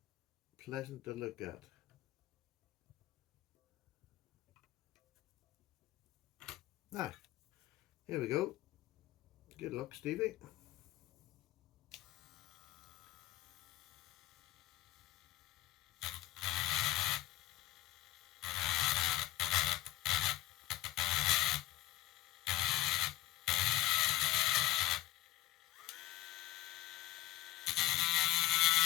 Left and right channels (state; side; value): quieter; right; 15.5 dB